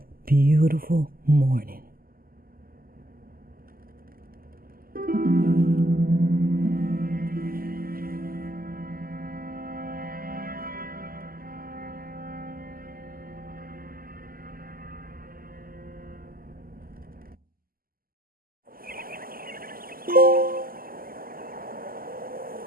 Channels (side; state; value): left; late; 0.42 ms